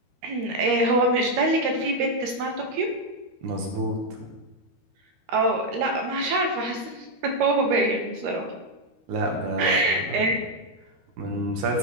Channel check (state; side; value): late; left; 13 ms